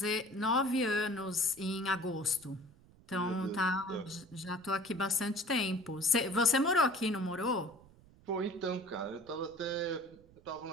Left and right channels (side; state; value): right; noise; rumble, 25 dB below the sound